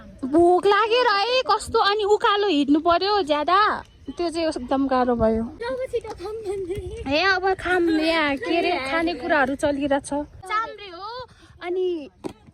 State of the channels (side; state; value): both; identical; correlation 1.00